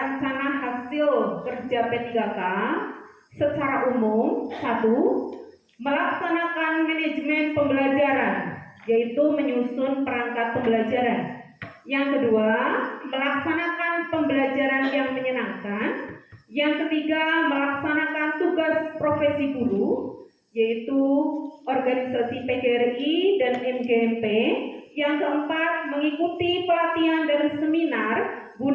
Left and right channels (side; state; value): both; identical; correlation 1.00